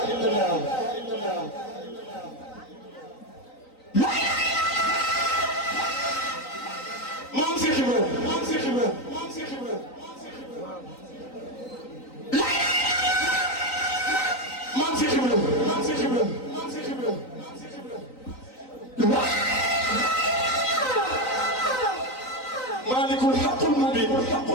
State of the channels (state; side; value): late; right; 3.9 ms